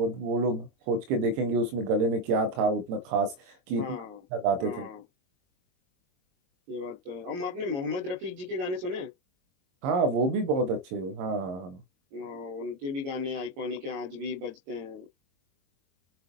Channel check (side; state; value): left; late; 22 ms